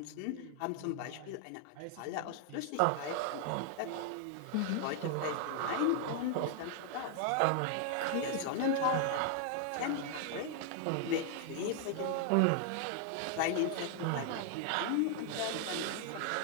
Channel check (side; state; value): both; different; correlation 0.00